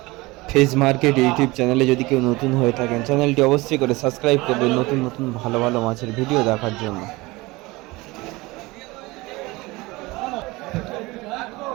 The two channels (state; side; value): quieter; left; 22.0 dB